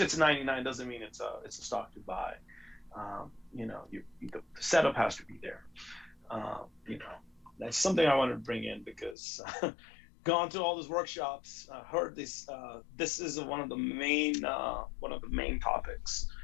99 doesn't mean it's a stock to buy. The setup has to be there. That's something I wanted to bring in, because gone to all those workshops, heard this. This is one of the main topics.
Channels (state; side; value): drops out; right; at 9.2 s